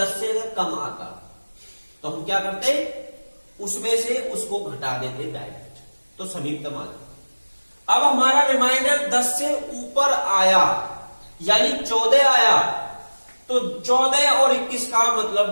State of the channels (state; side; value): inverted; both; correlation -1.00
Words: से अगर कम आता तो हम क्या करते? उसमें से उसको घटा देते डायरेक्ट, तो समीपतम आ जाता। अब हमारा रिमाइंडर 10 से ऊपर आया यानी 14 आया, तो 14 और 21 का मतलब